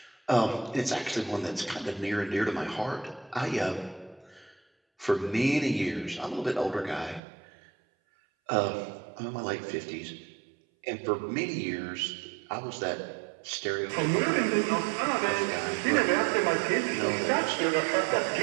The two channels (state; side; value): drops out; left; at 7.2 s